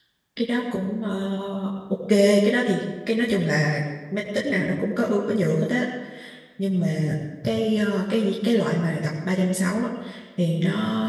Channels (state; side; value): identical; both; correlation 1.00